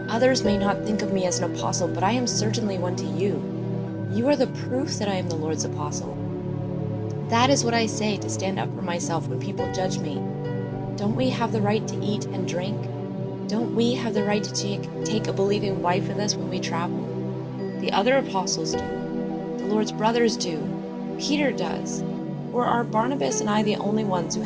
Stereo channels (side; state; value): both; identical; correlation 1.00